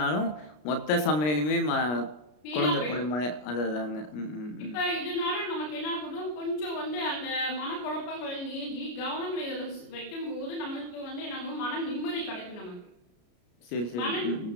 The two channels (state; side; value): late; right; 33 ms